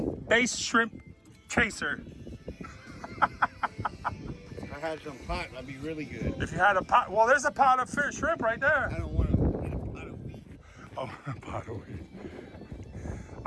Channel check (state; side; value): identical; both; correlation 1.00